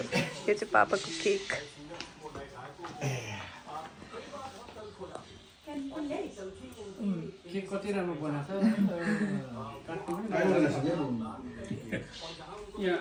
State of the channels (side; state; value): both; identical; correlation 1.00